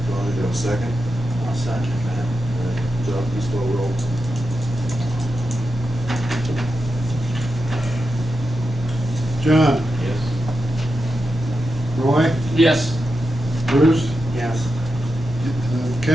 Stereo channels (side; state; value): both; normal; correlation 0.89